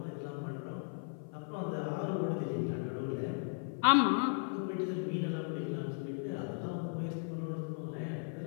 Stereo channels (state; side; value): silent; right; 53 dB below the other